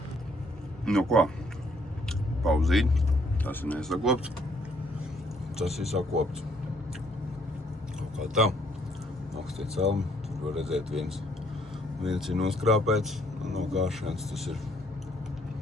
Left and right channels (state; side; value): normal; both; correlation 0.66